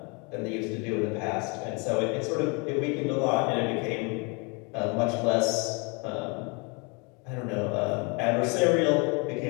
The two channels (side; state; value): right; quieter; 31.9 dB